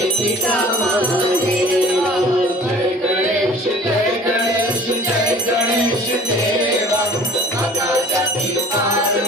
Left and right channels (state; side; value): normal; both; correlation 0.47